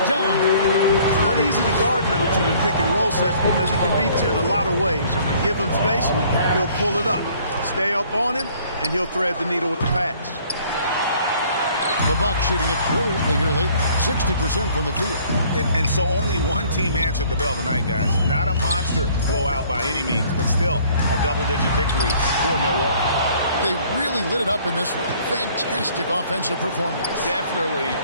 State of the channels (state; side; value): inverted; both; correlation -0.57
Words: down. It's not easy to guard Middleton in pick and roll sets because he can beat you in a lot of ways. I mean, give him space, he'll pull it up. Stay up on him, and he'll thread the needle with the pass. The Bucks shooting it brilliantly here late. 60% from the field. And so only one team answered the bell tonight, guys. Not a monster blowout by any means, but still a double-digit victory for Milwaukee. They really lit it up in this one. Fantastic offensive performance. Definitely.